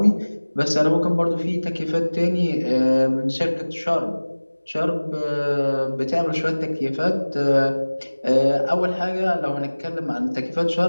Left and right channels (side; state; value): both; inverted; correlation -1.00